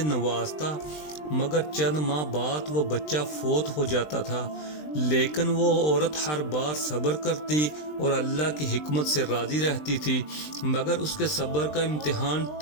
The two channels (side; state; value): right; late; 20 ms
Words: نوازتا، مگر چند ماہ بعد وہ بچہ فوت ہو جاتا تھا، لیکن وہ عورت ہر بار صبر کرتی اور اللہ کی حکمت سے راضی رہتی تھی، مگر اس کے صبر کا امتحان